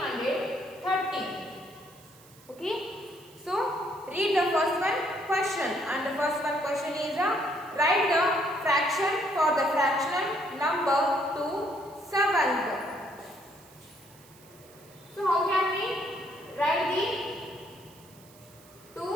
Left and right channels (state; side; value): noise; right; hiss, 25 dB below the sound